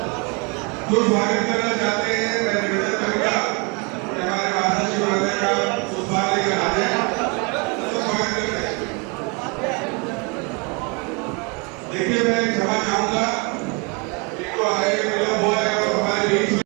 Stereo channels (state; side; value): quieter; left; 31.6 dB